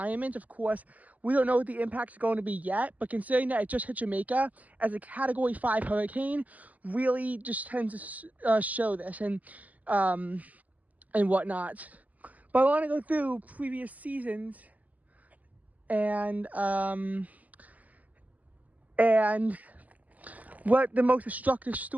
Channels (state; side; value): late; left; 0.077 ms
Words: Of course, we don't know what the impact is going to be yet, but considering that it just hit Jamaica as a Category 5 hurricane, really just tends to show this and whatnot. But I want to go through previous seasons and what the most destructive